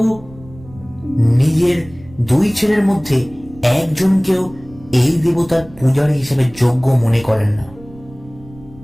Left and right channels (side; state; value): right; noise; rumble, 21 dB below the sound